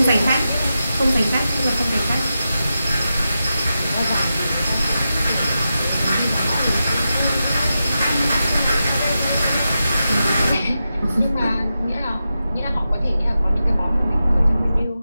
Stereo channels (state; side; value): inverted; both; correlation -0.90